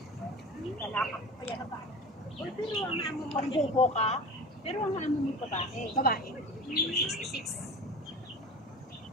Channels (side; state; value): both; normal; correlation 0.34